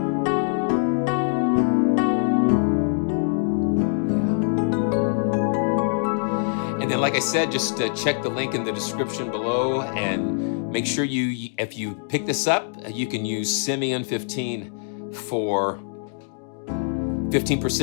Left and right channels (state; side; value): silent; right; digital silence